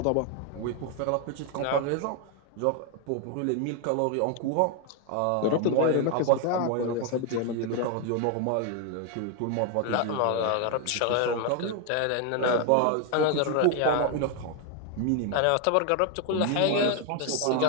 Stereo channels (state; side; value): different; both; correlation 0.01